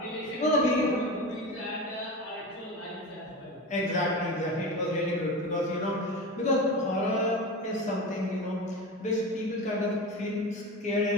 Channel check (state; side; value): normal; both; correlation 0.27